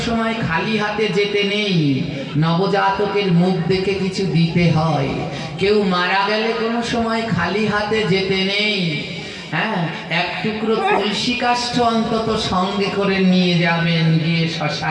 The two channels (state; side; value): identical; both; correlation 1.00